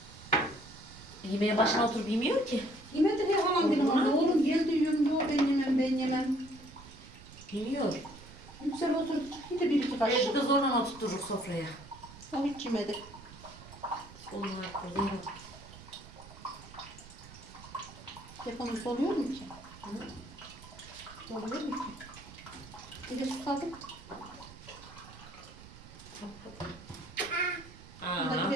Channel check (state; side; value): noise; right; rumble, 18 dB below the sound